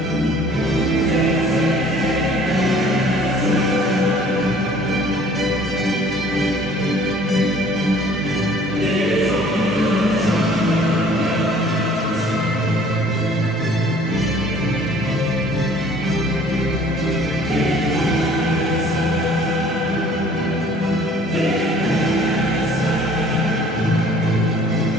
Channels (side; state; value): both; normal; correlation 0.54